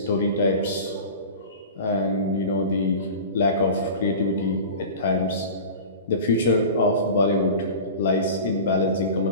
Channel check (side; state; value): both; inverted; correlation -0.35